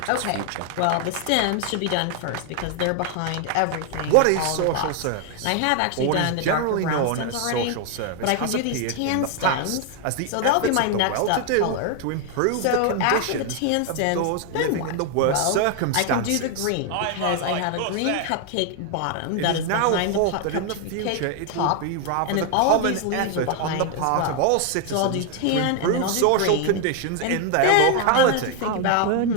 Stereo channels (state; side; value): different; both; correlation 0.00